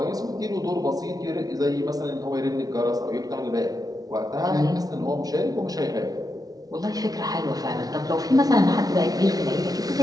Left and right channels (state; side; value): late; left; 0.18 ms